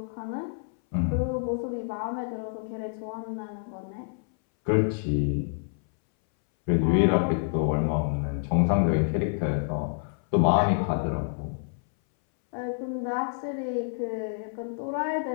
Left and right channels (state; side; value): silent; right; 60 dB below the other